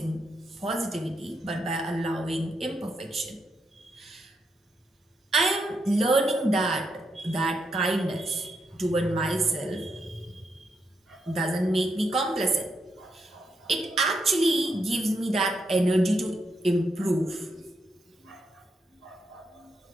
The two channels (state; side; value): normal; both; correlation 0.81